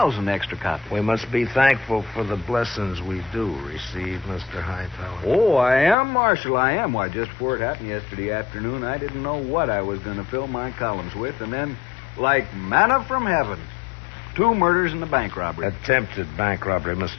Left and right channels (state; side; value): drops out; right; at 6.0 s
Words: extra copies. We must be thankful for the blessings we do receive, Mr. Hightower. Oh, I am, Marshal, I am. Why, just before it happened yesterday afternoon, I didn't know what I was going to fill my columns with, and then, like manna from heaven, 2 murders and a bank robbery. Attempted bank robbery,